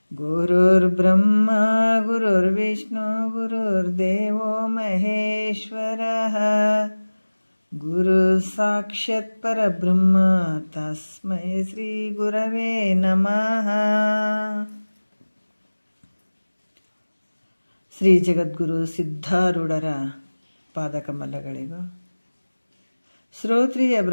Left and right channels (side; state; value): both; inverted; correlation -1.00